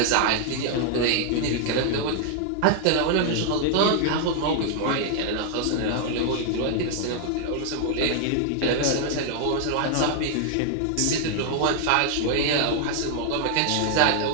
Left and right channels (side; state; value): both; different; correlation 0.00